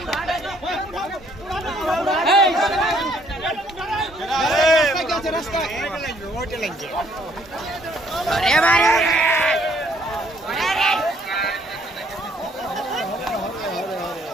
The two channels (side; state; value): both; normal; correlation 0.65